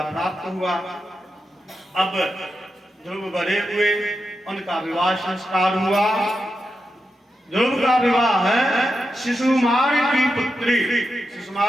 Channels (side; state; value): both; normal; correlation 0.88